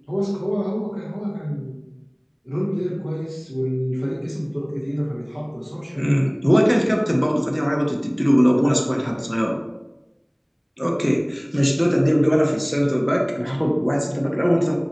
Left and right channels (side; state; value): both; identical; correlation 1.00